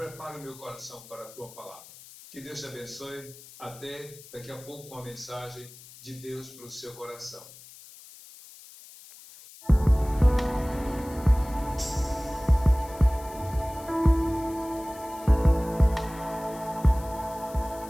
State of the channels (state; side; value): noise; left; hiss, 19 dB below the sound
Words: o meu coração para a tua palavra. Que Deus te abençoe. Até daqui a pouco com a mensagem de Deus para o seu coração.